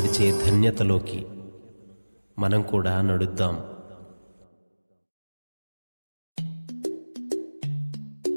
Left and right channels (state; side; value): inverted; both; correlation -1.00